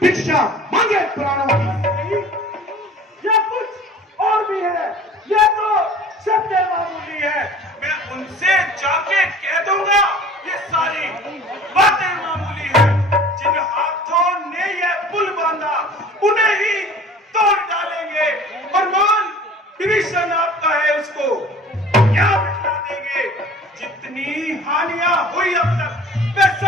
मांगे प्राणों की। या कुछ और भी है, ये तो सत्य मामूली है। मैं उनसे जाके कह दूंगा ये सारी बातें मामूली है। जिन हाथों ने ये पुल बांधा उन्हें ही तोड़ डालेंगे और मान विभीषण आपका है उसको क्या बिठा देंगे। जितनी हानियां हुई अब तक वे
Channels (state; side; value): normal; both; correlation 0.46